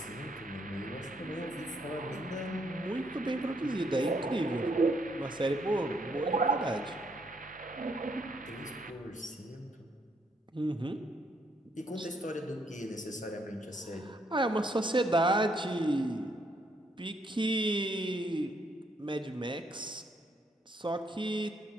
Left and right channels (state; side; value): normal; both; correlation 0.72